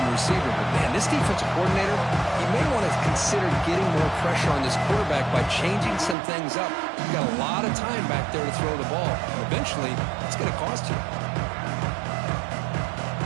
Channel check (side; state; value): left; drops out; at 6.2 s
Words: the receiver. But, man, this defensive coordinator, he may want to consider getting more pressure on this quarterback by changing some things up. You've got a lot of time back there to throw the ball. Eventually, it's going to cost you.